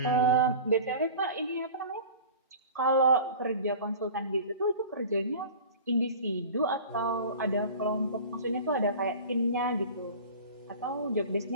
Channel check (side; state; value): both; inverted; correlation -0.38